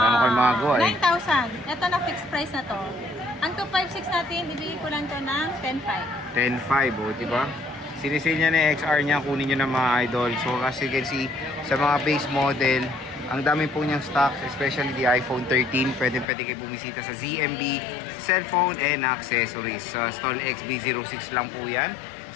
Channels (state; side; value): drops out; right; at 16.2 s